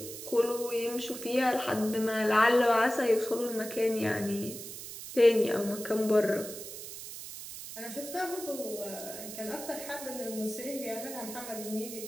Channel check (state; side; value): noise; right; hiss, 10 dB below the sound